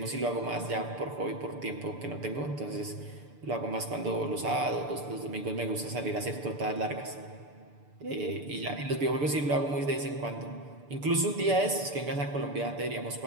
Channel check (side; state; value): left; late; 6.9 ms